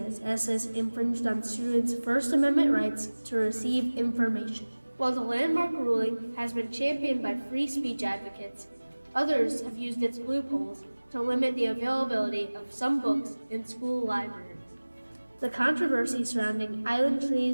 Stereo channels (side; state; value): both; inverted; correlation -1.00